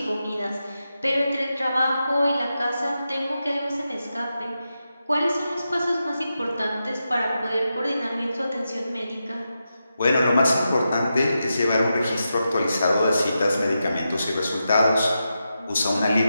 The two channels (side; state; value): both; inverted; correlation -0.88